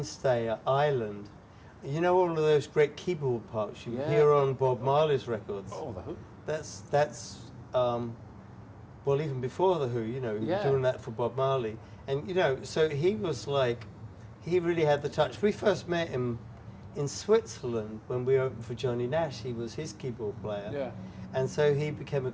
at Ireland. You know all of those great keyboard parts you hear on Bob Marley's records? Oh, The Who. That's well, even before The Who, you know, he was doing that for Bob Marley. And, you know, so he was like, he really had the touch. We first met him in Switzerland when we opened for Johnny Nash. He was his keyboard player. Yeah. And so he became a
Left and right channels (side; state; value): both; identical; correlation 1.00